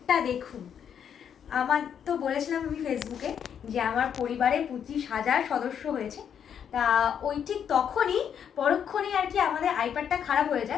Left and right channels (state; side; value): quieter; right; 8.3 dB